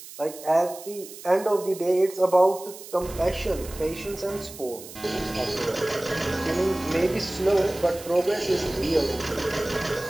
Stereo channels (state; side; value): noise; right; hiss, 15 dB below the sound